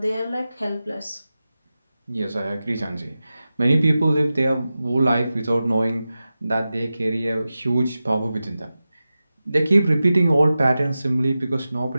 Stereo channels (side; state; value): both; inverted; correlation -0.94